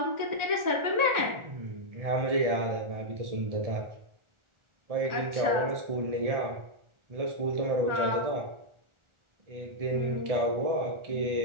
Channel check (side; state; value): left; late; 1.4 ms